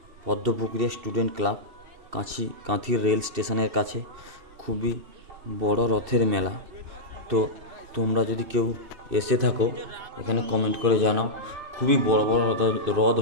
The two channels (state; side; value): late; left; 2.9 ms